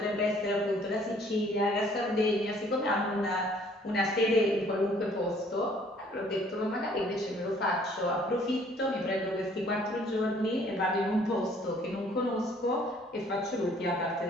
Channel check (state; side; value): normal; both; correlation 0.59